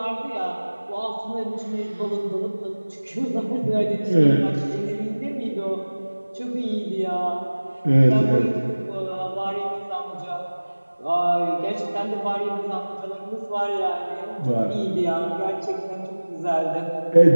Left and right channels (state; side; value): inverted; both; correlation -1.00